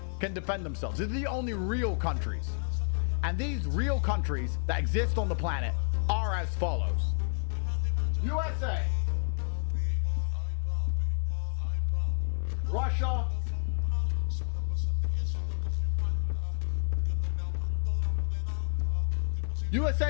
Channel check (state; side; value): silent; right; digital silence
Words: can defend themselves. These are the only real countries. And these real countries that exist on the planet are as follows. USA, Russia,